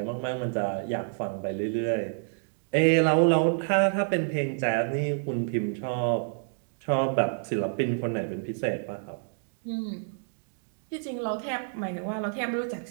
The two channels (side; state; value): left; silent; digital silence